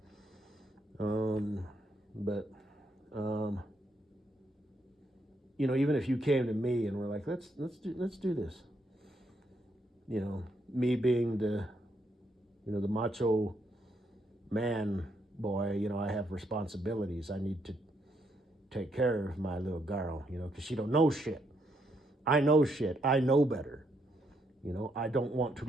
But you know, even if you came to me and were like, let's do this, you know, me being the, you know, the macho man boy, you know, I have responsibilities. I need to take care of my little girl, you know, because she don't know shit. I know shit. I know better. You know, I don't want to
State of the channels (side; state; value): both; normal; correlation 0.76